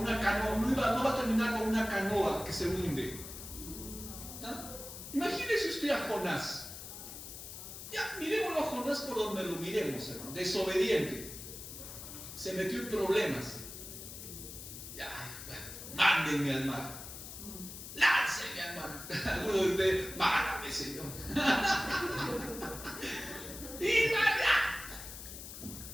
canoa, no va a terminar como una canoa que se hunde. ¿Ah? Imagínese usted a Jonás. Ya, miremoslo a Jonás por donde lo miremos, hermano. Desobediente. Se metió en problemas. Ya, bueno, mándenme al mar. Láncenme al mar. Algunos de ustedes: mándame, Señor. Y vaya.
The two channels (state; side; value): noise; left; hiss, 11 dB below the sound